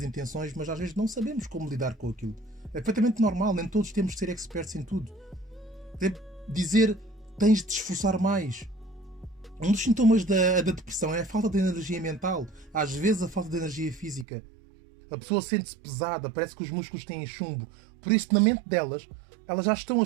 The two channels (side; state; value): left; drops out; at 14.2 s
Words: intenções, mas às vezes não sabemos como lidar com aquilo. É perfeitamente normal, nem todos temos de ser experts em tudo. Dizer tens de te esforçar mais. Um dos sintomas da depressão é a falta de energia mental, às vezes a falta de energia física. A pessoa sente-se pesada, parece que os músculos têm chumbo. Por isso, na mente delas, elas já estão a